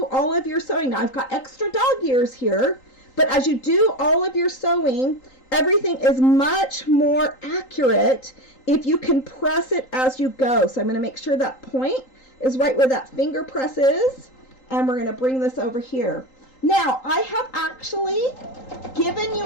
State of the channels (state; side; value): late; right; 3.8 ms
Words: all of your sewing, now I've got extra dog ears here, but as you do all of your sewing, everything is much more accurate if you can press it as you go. So I'm going to make sure that point is right where that finger press is, and we're going to bring this over here. Now, I have actually given